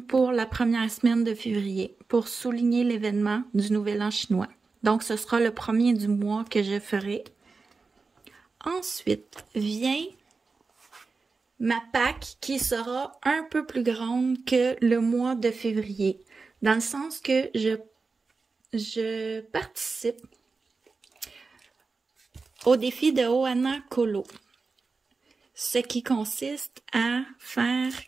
pour la première semaine de février, pour souligner l'événement du Nouvel An chinois. Donc, ce sera le premier du mois que je ferai. Ensuite, vient ma Pâques qui sera un peu plus grande que le mois de février, dans le sens que je participe au défi de Ohana Colo, ce qui consiste à faire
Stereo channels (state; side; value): quieter; left; 4.3 dB